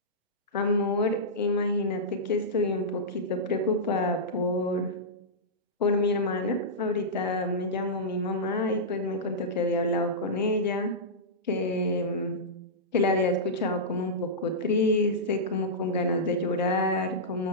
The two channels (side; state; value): both; normal; correlation -0.13